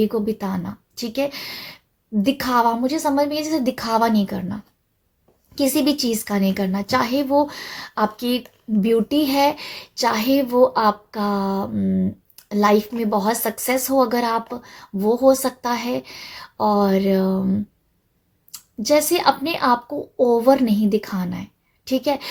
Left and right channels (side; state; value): both; identical; correlation 1.00